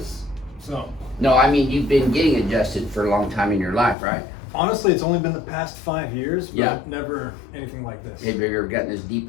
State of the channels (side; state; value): right; drops out; at 4.0 s